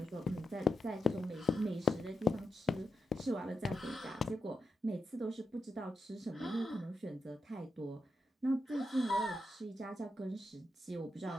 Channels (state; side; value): normal; both; correlation 0.86